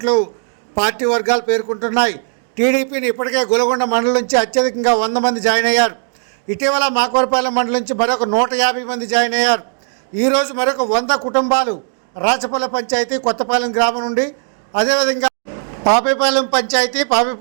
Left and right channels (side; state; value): left; silent; digital silence